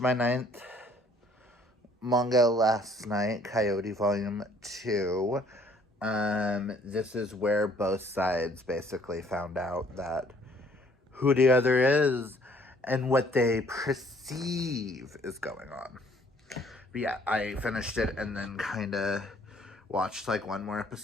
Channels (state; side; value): normal; both; correlation 0.60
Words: 9th manga last night, Coyote Volume 2. This is where both sides basically found out that who the other is and what they perceive is going on. But yeah, I finished it and then kind of watched like one more